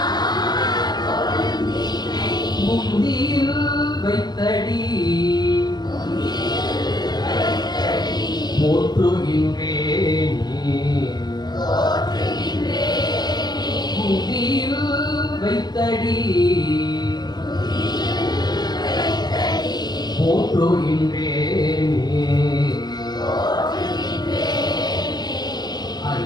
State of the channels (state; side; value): late; right; 0.20 ms